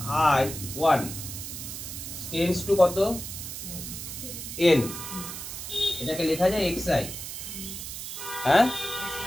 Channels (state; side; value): noise; right; hiss, 8 dB below the sound